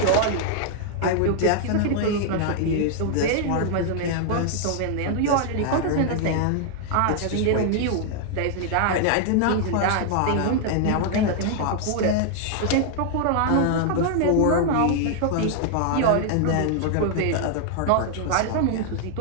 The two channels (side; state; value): both; different; correlation 0.00